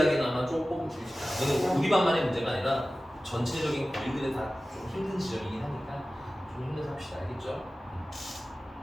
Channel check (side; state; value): both; normal; correlation 0.96